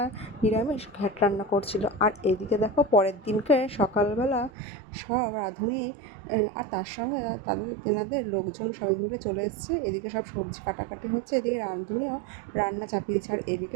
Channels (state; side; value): drops out; left; at 4.5 s